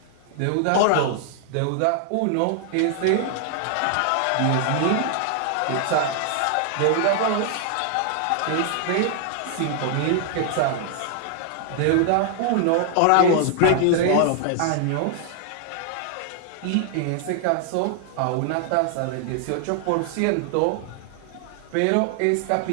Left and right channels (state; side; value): different; both; correlation 0.00